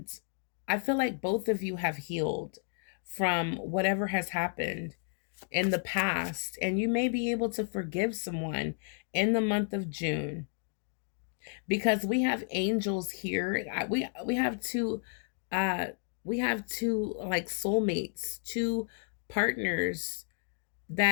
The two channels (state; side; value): silent; right; 56 dB below the other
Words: I feel like both of you have healed from whatever has happened in the past. And you may be able to forgive someone in the month of June because we have angels here. We have two like soulmates, two partners